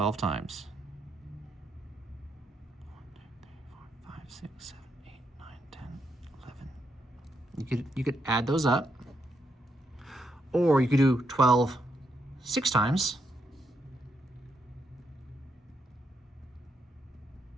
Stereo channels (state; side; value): normal; both; correlation 0.79